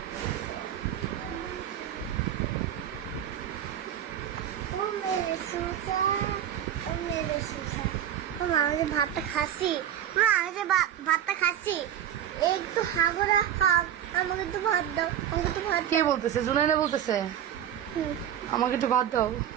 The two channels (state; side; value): quieter; left; 10.3 dB